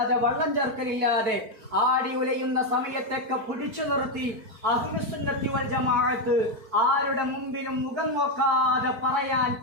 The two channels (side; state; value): left; late; 4.5 ms